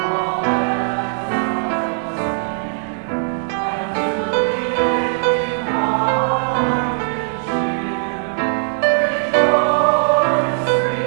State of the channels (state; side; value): silent; left; digital silence